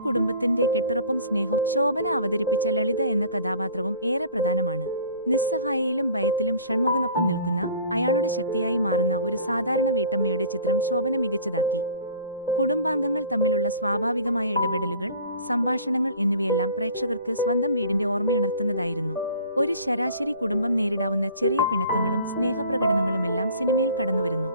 കെട്ടുറപ്പും സ്നേഹവും ശോഭന അവതരിപ്പിച്ച ലളിത എന്ന കഥാപാത്രവും ഏറെ പ്രധാനമാണ്. നിസ്സഹായയിലും ഭയത്തിലും ഷൺമുഖനൊപ്പം നിൽക്കുന്ന, അയാളുടെ ശക്തിയായി മാറുന്ന ഒരു സാധാരണ വീട്ടമ്മയുടെ ചിത്രം ശോഭന മികച്ചതാക്കി. കുടുംബാംഗങ്ങൾ തമ്മിലുള്ള സ്വാഭാവികമായ ഇടപെടലുകൾ, സംഭാഷണങ്ങൾ എന്നിവയെല്ലാം പ്രേക്ഷകർക്ക് സ്വന്തം വീടിന്റെ ഓർമ്മയുണർത്തുന്നതായിരുന്നു. ഒരു ശരാശരി കുടുംബം നേരിടാവുന്ന ചെറിയ പിണക്കങ്ങളും സ്നേഹപ്രകടനങ്ങളുമെല്ലാം സിനിമയിൽ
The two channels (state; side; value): inverted; both; correlation -0.47